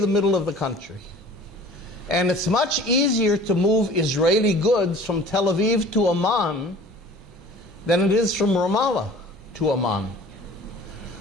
middle of the country. And it's much easier to move Israeli goods from Tel Aviv to Amman than it is from Ramallah to Amman.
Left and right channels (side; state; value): both; normal; correlation 0.46